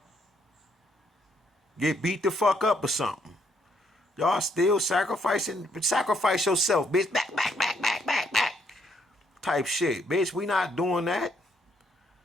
Get beat the fuck up or something. Y'all still sacrificing? Sacrifice yourself, bitch. Back, back, back, back, back, back. Type shit. Bitch, we not doing that.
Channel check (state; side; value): normal; both; correlation 0.72